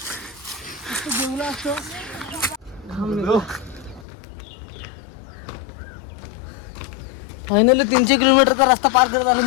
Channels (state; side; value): drops out; right; at 4.0 s